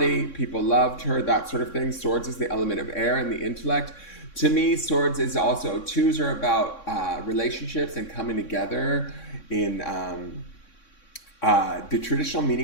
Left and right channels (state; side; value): late; right; 3.6 ms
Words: People loved her, that sort of thing. Swords is the element of air and the intellect. To me, Swords is also, twos are about relationships and coming together in the traditional